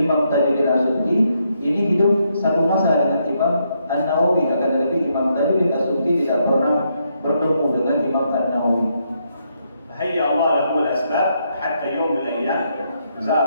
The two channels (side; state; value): both; inverted; correlation -0.77